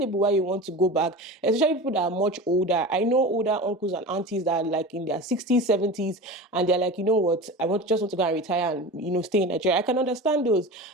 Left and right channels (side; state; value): both; normal; correlation 0.31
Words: why you want to go back, especially people that are much older. I know older uncles and aunties that are like in their 60s, 70s, and they're like, you know what, I just want to go and retire and, stay in Nigeria. I can understand those.